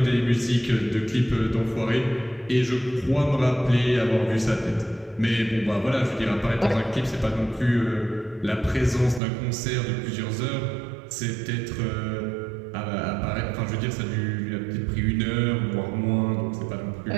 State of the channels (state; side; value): drops out; left; at 9.2 s